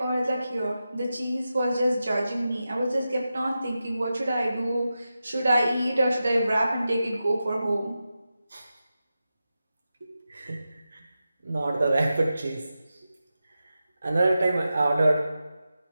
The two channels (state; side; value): inverted; both; correlation -0.91